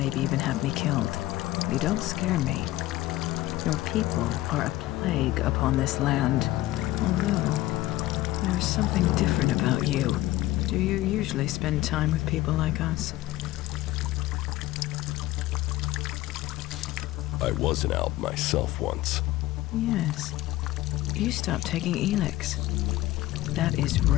even have me killed? You don't scare me. Your people are a plague upon this land. Although, there's something different about you. Do you usually spend time with people like us? I was an Alb myself once. Yes. You stopped taking Elex. That is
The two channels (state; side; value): quieter; right; 16.4 dB